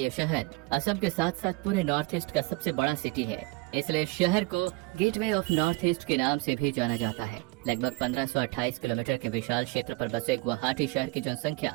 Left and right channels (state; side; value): quieter; left; 24.2 dB